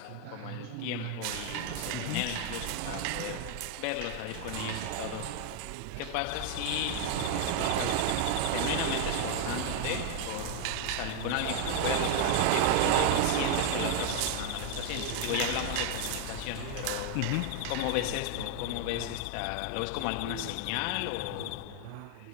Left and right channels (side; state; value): both; different; correlation 0.00